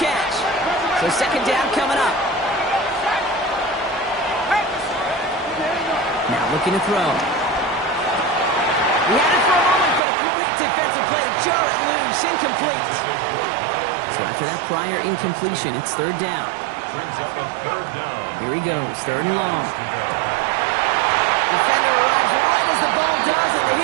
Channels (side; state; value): left; drops out; at 10.0 s